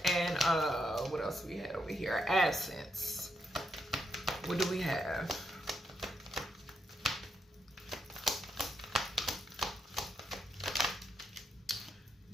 and what else we had over here? Absence. What do we have?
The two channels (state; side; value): normal; both; correlation 0.80